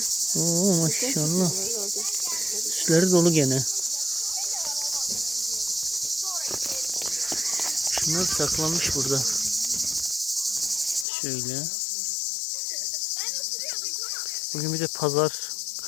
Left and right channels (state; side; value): drops out; right; at 11.1 s